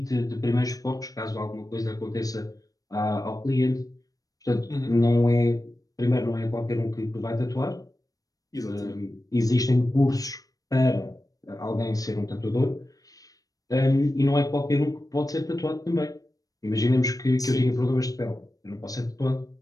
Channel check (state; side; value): late; right; 0.17 ms